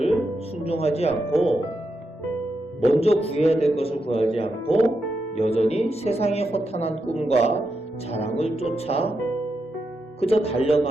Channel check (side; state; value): both; normal; correlation 0.85